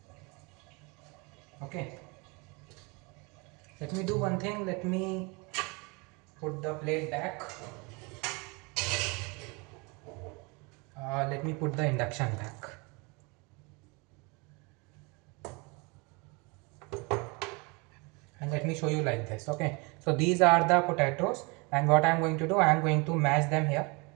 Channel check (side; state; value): left; quieter; 28.7 dB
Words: Okay, let me do one thing. Let me put the plate back. Let me put the induction back. And let me show you like this. Okay, so these are the potatoes, and what I am going to do, I am going to mash them here.